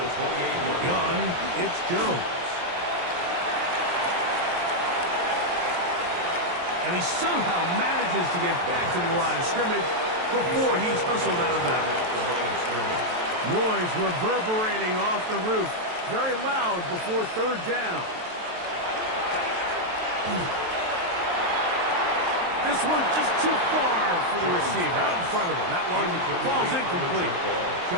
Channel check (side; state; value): left; late; 23 ms